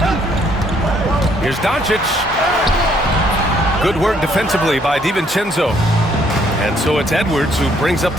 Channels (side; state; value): both; normal; correlation 0.67